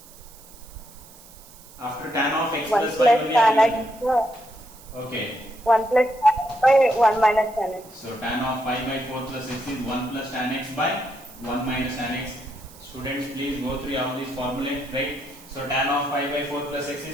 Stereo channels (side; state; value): right; noise; hiss, 21 dB below the sound